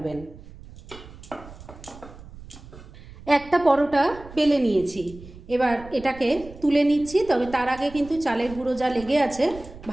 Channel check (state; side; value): noise; right; rumble, 17 dB below the sound